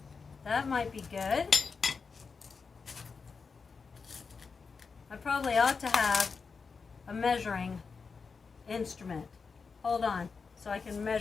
that might be good. I probably ought to have a measuring instrument. Hold on, so I can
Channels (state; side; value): quieter; right; 5.1 dB